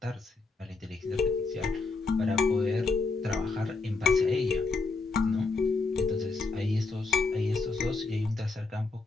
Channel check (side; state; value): right; quieter; 3.9 dB